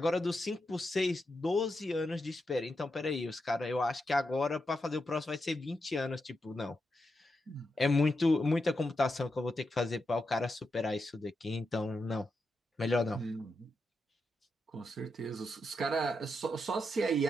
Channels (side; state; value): both; normal; correlation 0.86